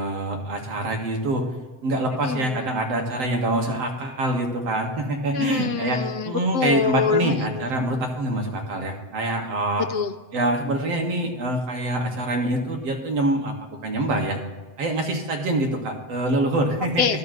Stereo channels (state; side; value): late; left; 7.8 ms